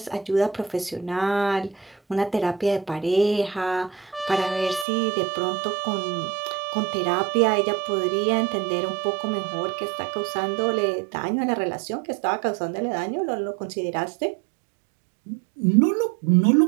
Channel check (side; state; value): left; drops out; at 4.9 s